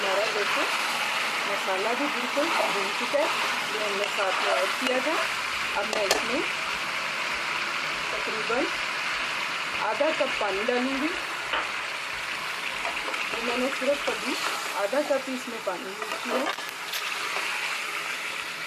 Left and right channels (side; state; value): both; identical; correlation 1.00